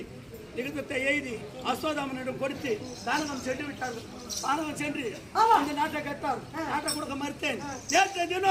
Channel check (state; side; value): identical; both; correlation 1.00